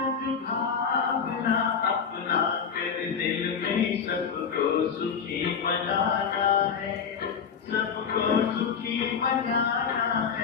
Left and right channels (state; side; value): quieter; right; 6.6 dB